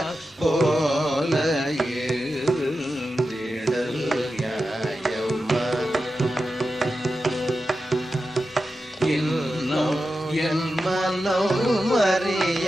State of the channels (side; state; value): both; normal; correlation 0.91